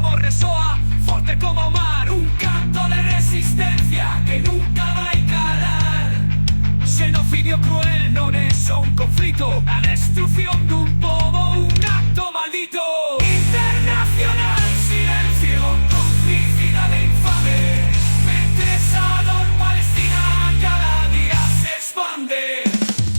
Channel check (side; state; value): both; inverted; correlation -1.00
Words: resoa forte como o mar, un canto de resistencia que nunca vai calar. Xenocidio cruel non é só un conflito, a destrucción dun pobo, un acto maldito.